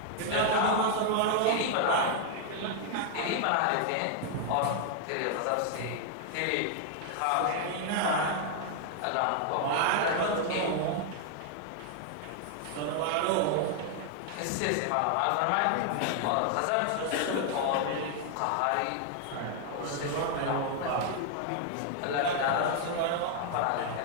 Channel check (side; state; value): both; different; correlation 0.00